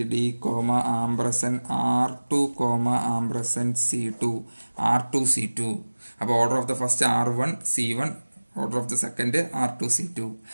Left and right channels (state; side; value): inverted; both; correlation -1.00